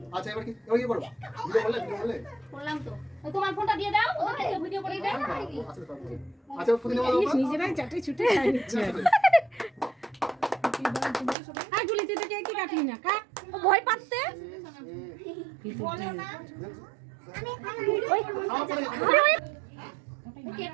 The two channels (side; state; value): left; drops out; at 11.4 s